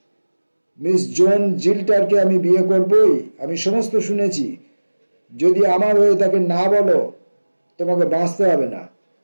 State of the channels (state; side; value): inverted; both; correlation -1.00